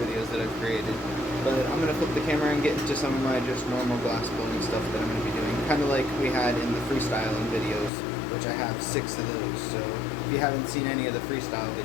that I've created. But I'm going to flip the camera and get into some of my just normal glass blowing stuff that I'm going to be doing. Kind of like we had in the freestyling videos, which I have 6 of those. So if you haven't seen any of the freestyle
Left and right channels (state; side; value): drops out; right; at 7.9 s